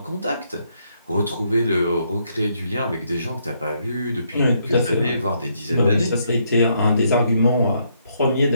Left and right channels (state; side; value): inverted; both; correlation -0.74